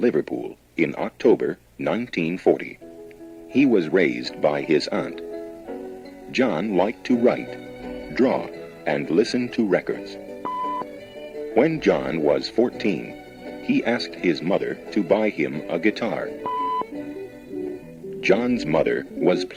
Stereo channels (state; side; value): identical; both; correlation 1.00